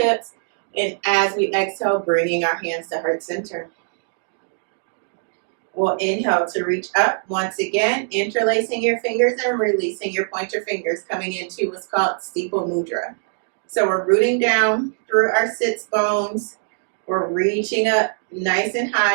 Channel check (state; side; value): silent; left; digital silence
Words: And as we exhale, bringing our hands to heart center. We'll inhale to reach up once again, interlacing your fingers and releasing your pointer fingers, coming into what's called steeple mudra. So we're rooting down through our sits bones. We're reaching up nice and